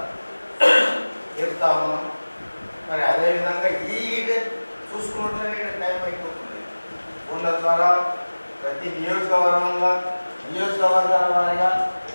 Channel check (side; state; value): both; inverted; correlation -1.00